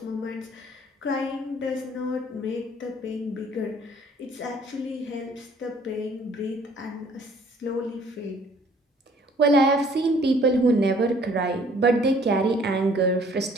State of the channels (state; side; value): normal; both; correlation 0.57